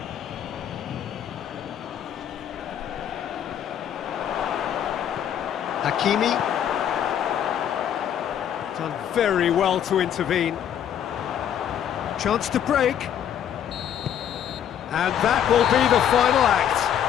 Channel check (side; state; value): right; quieter; 9.7 dB